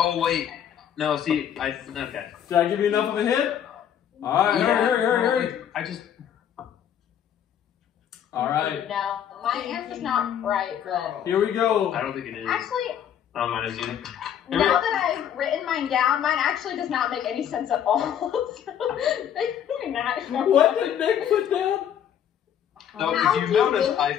wait, no. See, okay. Did I give you enough of a hint? All right, hurry. I just. All right, No, my answer's not right, but here we go. I don't think it is. actually, I don't mind it either. now that I've written mine down, mine actually does not make any sense at all. What did Nick put down? No, How if do you notice, you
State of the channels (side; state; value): right; quieter; 9.5 dB